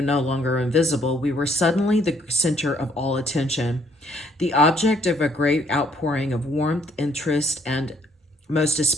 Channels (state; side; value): normal; both; correlation 0.66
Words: longer invisible, we were suddenly the center of all attention, the object of a great outpouring of warmth, interest, and most